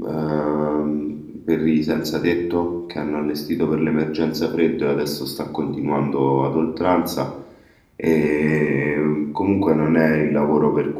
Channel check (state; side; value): identical; both; correlation 1.00